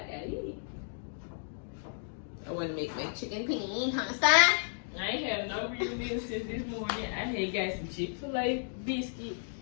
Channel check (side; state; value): right; silent; digital silence